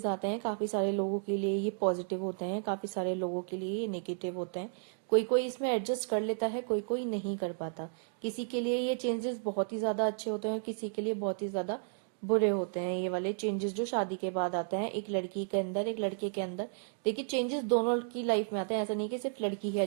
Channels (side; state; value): left; silent; digital silence